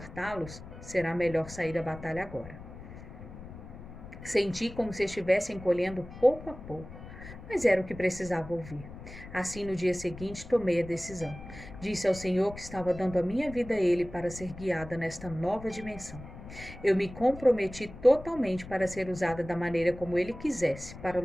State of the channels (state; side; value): noise; left; rumble, 14 dB below the sound